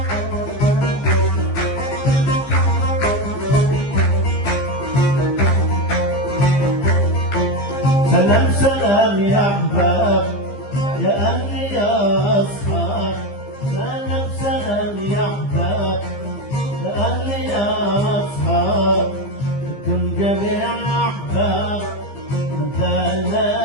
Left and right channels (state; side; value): late; right; 15 ms